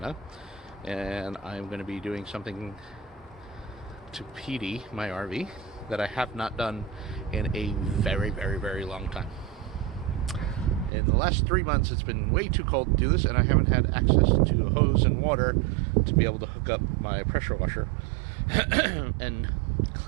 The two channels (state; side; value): drops out; left; at 10.9 s